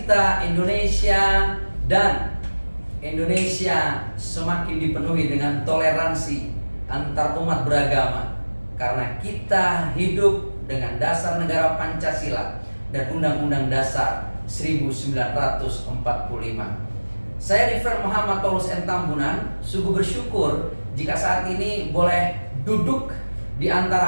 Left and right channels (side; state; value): both; inverted; correlation -1.00